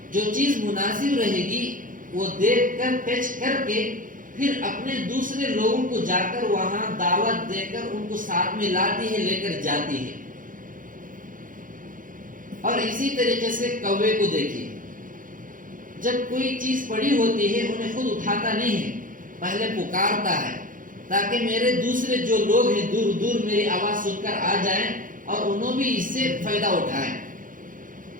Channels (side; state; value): left; late; 0.39 ms